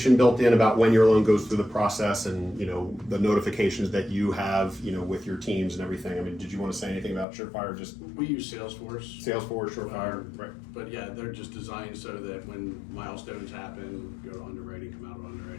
built in about when your loan goes through the process and, the notifications that you have, with your teams and everything. I mean, did you want to say anything about Surefire? Just We use Salesforce. Salesforce, Surefire, right? But yeah, they're just designed so that when milestones happen, go to underwriting, come out of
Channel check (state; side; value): drops out; right; at 7.2 s